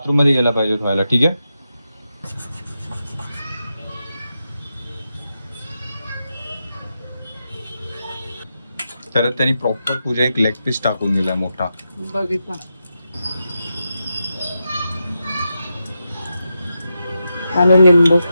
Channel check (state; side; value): inverted; both; correlation -0.87